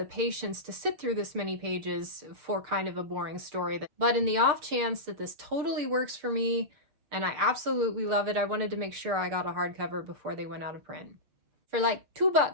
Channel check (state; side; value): late; left; 6.7 ms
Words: patience to sit through this many pages for kind of a boring story. But in the off chance that this totally works for me, and I absolutely love it, I wanted to make sure I got a hardcover before they went out of print. For like